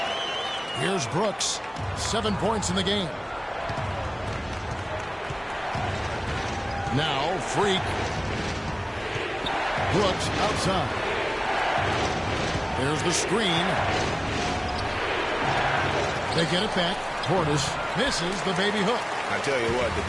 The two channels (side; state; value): both; identical; correlation 1.00